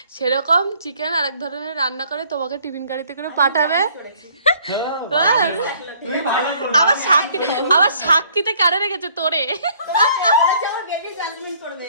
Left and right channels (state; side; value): inverted; both; correlation -0.60